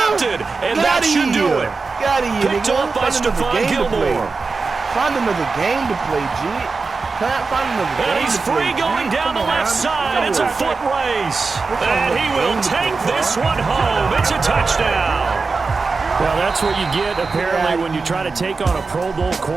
And that should do it. Picked off by Stephon Gilmore. Find another game to play, G. Find another game. And he's free going down the left side. It's a foot race. And he will take this one home. It's a touchdown. Well, that's what you get, apparently, when you try to take on a Pro Bowl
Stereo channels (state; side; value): quieter; left; 4.3 dB